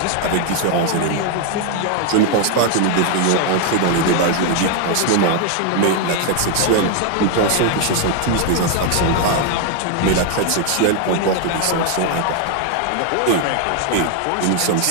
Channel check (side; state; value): both; different; correlation 0.00